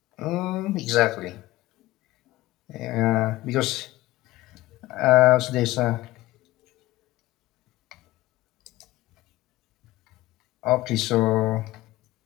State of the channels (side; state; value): right; quieter; 17.7 dB